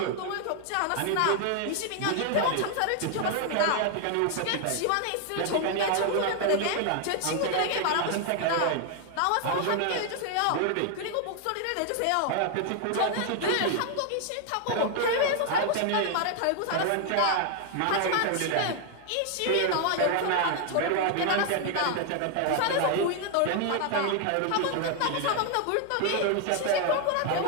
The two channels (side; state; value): both; different; correlation 0.00